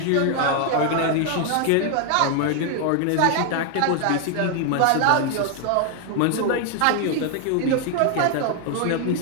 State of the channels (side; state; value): both; different; correlation 0.00